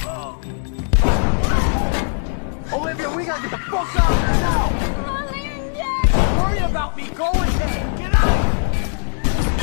Olivia, we gotta get the fuck out of here now! Don't worry about me. Go ahead. Get out of here!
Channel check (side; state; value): right; silent; digital silence